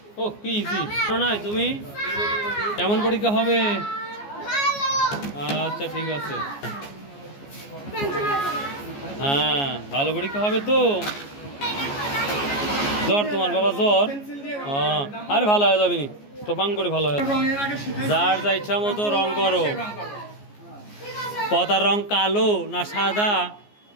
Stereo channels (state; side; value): late; right; 14 ms